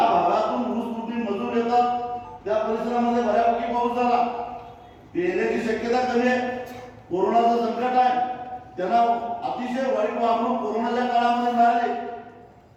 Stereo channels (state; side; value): identical; both; correlation 1.00